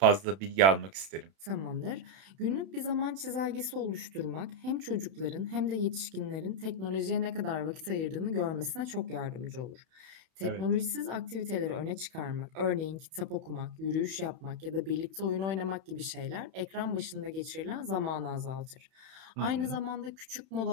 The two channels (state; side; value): late; left; 31 ms